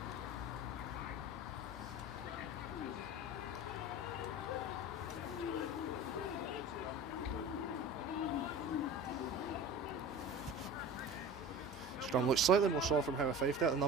Scrum looks slightly more soft from Howe 5 there. The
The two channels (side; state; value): both; normal; correlation 0.36